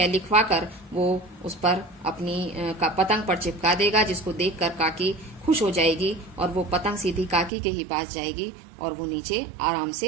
लिखवा कर वो उस पर अपनी पतंग पर चिपका देगा, जिसको देखकर काकी खुश हो जाएगी और वो पतंग सीधी काकी के ही पास जाएगी और वो नीचे आराम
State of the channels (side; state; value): left; drops out; at 7.5 s